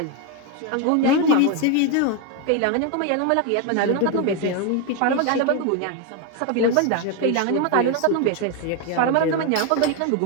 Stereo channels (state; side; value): different; both; correlation 0.01